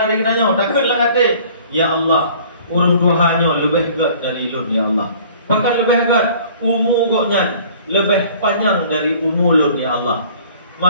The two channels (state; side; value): inverted; both; correlation -0.51